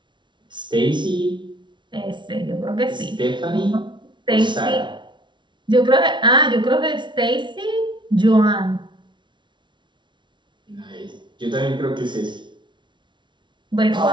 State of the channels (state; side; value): late; left; 0.23 ms